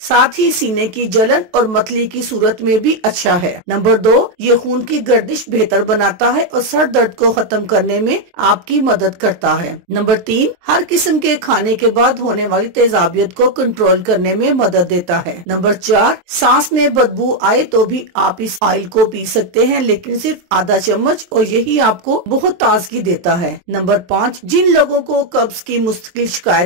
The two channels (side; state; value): left; late; 23 ms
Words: ही सीने की जलन और मतली की सूरत में भी अच्छा है। नंबर 2, ये खून की गर्दिश बेहतर बनाता है और सर दर्द को खत्म करने में आपकी मदद करता है। नंबर 3, हर किस्म के खाने के बाद होने वाली तेजाबियत को कंट्रोल करने में मदद देता है। नंबर 4, सांस में बदबू आए तो भी आप इस ऑयल को पी सकते हैं, लेकिन सिर्फ आधा चम्मच, और यही आपको बहुत ताजगी देता है। नंबर 5, जिन लोगों को कब्ज की मुस्तकिल